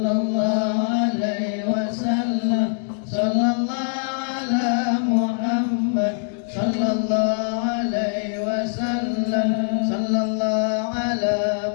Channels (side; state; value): right; silent; 64 dB below the other